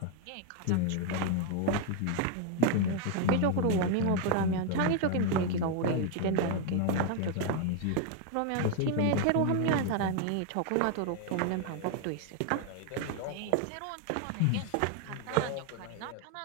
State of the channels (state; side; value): different; both; correlation 0.00